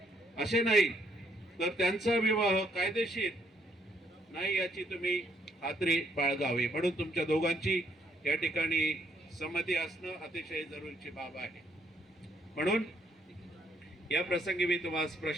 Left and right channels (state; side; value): normal; both; correlation 0.71